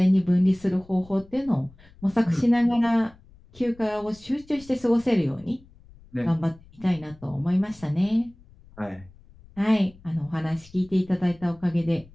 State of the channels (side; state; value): left; noise; rumble, 25 dB below the sound